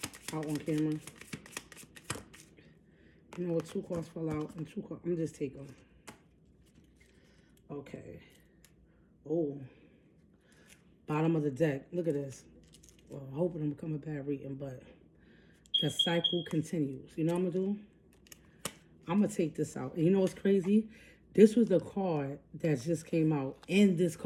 out on camera. You know what, 2 cards fell out and 2 cards. I'm just take them. Okay. Oh. Bottom of the deck. Look at this. Well, I hope it don't become a bad reading, but the cycle continues. You know what I'm going to do? I'm going to take this out. And you know what's crazy? This was the card that just came out. And this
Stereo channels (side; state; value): both; identical; correlation 1.00